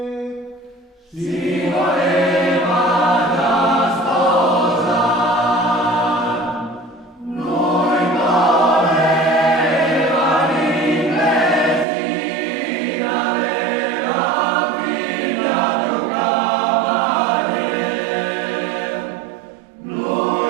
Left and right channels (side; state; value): left; drops out; at 11.9 s